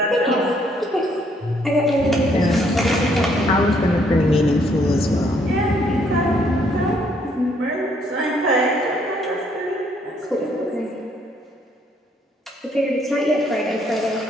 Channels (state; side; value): normal; both; correlation 0.68